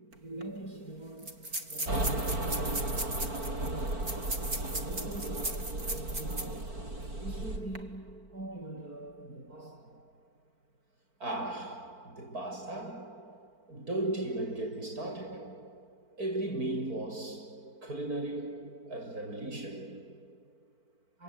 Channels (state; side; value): late; left; 4.5 ms